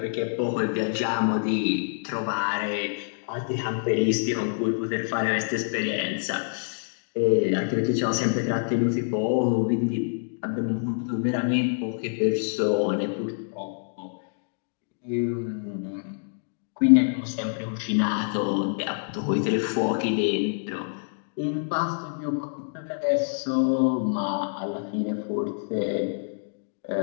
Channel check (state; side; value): silent; right; digital silence